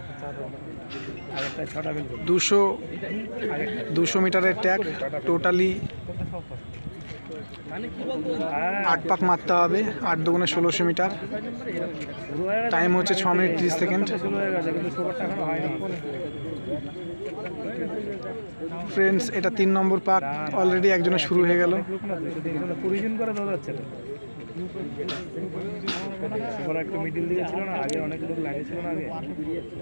200 মিটারের ট্যাগ, টোটালি 8 পাক মারতে হবে। 8 দুগুণে 1600 মিটার। টাইম হচ্ছে 6 মিনিট 30 সেকেন্ড। ফ্রেন্ডস এটা 3 নম্বর পাক, অলরেডি একজনের শুরু হয়ে গেল।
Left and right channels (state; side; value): inverted; both; correlation -1.00